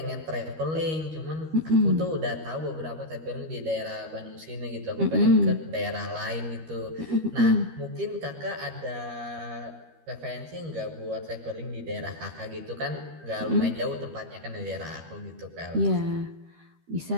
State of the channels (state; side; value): late; left; 13 ms